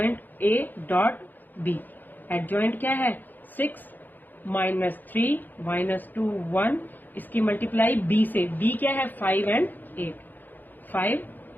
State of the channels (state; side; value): late; right; 0.087 ms